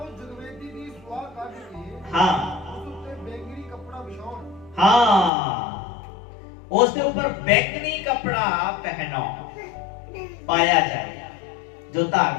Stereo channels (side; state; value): right; drops out; at 5.3 s